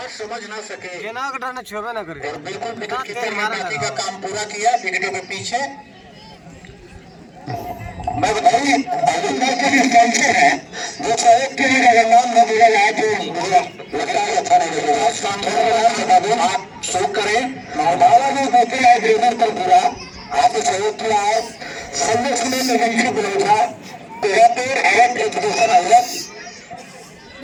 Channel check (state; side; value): identical; both; correlation 1.00